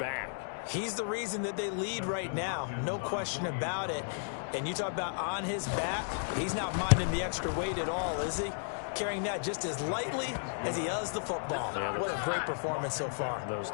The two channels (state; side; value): silent; right; digital silence